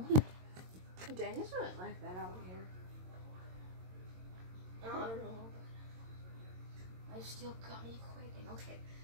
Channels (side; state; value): left; late; 22 ms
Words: Dang, it's not like that out here. I don't know. I still got me quaking. Okay,